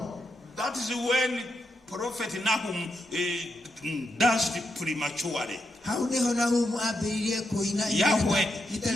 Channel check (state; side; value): normal; both; correlation 0.83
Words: That is when Prophet Nahum danced prematurely. Yahweh,